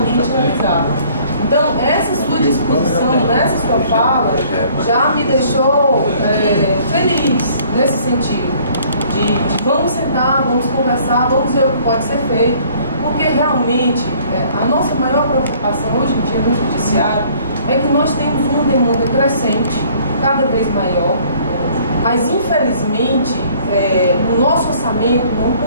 realizada. Então, essa sua disposição, essa sua fala, já me deixou feliz nesse sentido. De vamos sentar, vamos conversar, vamos ver o que pode ser feito, porque realmente a nossa maior preocupação hoje em dia no Judiciário é que nós temos uma demanda crescente, cada vez maior, mas infelizmente o nosso orçamento não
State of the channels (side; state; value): both; inverted; correlation -0.57